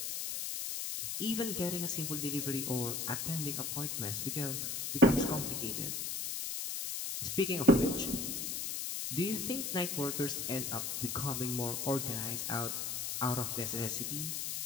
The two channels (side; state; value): left; noise; hiss, 2 dB below the sound